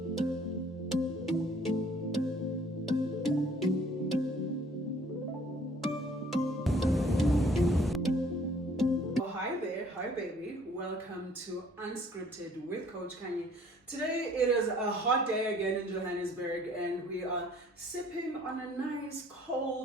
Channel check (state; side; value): normal; both; correlation 0.57